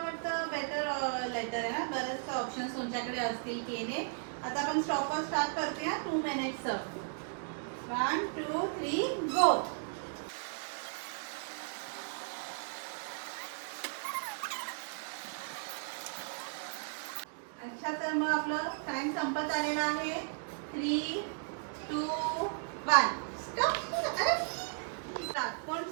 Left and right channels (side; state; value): left; silent; digital silence